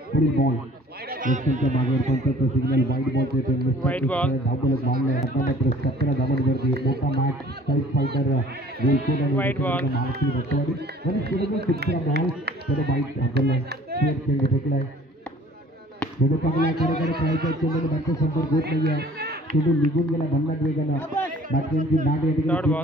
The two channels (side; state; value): both; normal; correlation 0.52